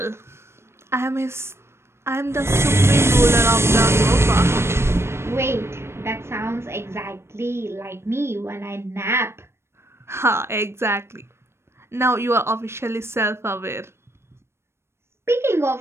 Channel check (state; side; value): late; left; 0.12 ms